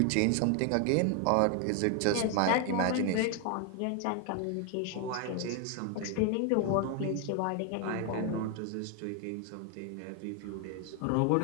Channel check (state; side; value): different; both; correlation 0.01